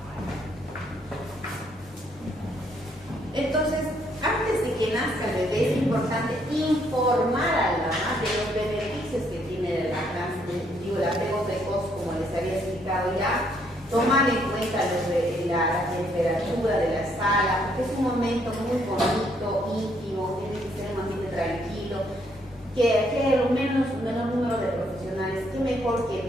Entonces, antes de que nazca el bebé, es importante informar a la mamá de los beneficios que tiene la lactancia, el apego precoz, como les había explicado ya, tomar en cuenta la temperatura de la sala, porque es un momento muy bonito, íntimo, tiene que ser un ambiente tranquilo, que haya un menor número de profesionales, que mejor que el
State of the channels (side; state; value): both; normal; correlation 0.70